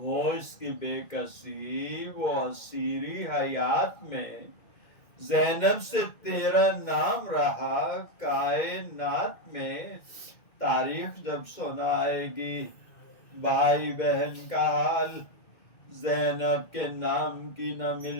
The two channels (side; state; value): right; late; 2.1 ms